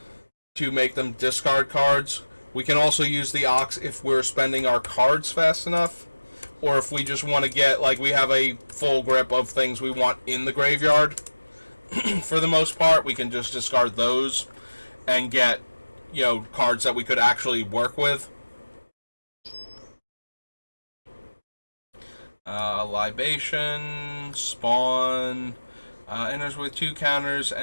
to make them discard cards. We can also use the Ox if we're spending our cards fast enough. Or if we just want to get, like, we have a full grip of things we want in the graveyard. For the most part, we can just discard those and get, cards that we could actually work with. Libation, Spawn, enters with 2 counters,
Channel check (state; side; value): inverted; both; correlation -1.00